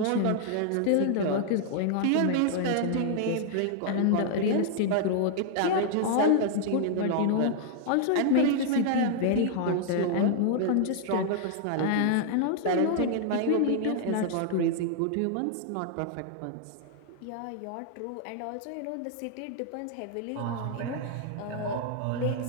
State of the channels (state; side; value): different; both; correlation -0.01